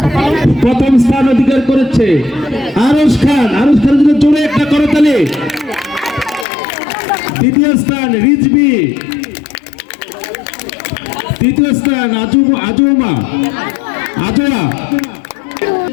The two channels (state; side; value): drops out; right; at 6.5 s